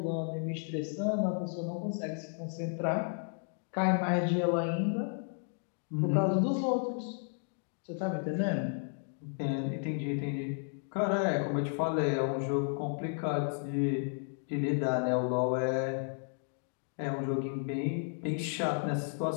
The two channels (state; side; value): silent; right; 56 dB below the other